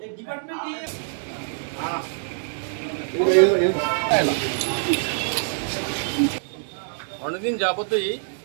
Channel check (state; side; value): silent; left; digital silence